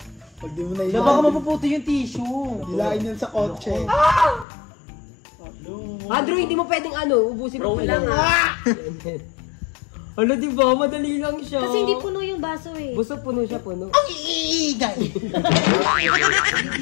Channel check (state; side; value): drops out; right; at 4.5 s